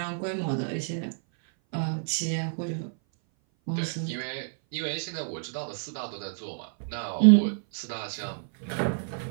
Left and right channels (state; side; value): silent; left; 57 dB below the other